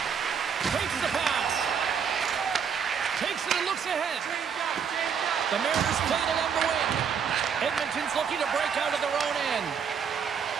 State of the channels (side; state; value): left; quieter; 7.0 dB